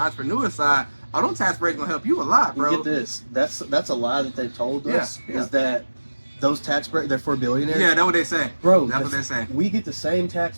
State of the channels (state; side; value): inverted; both; correlation -1.00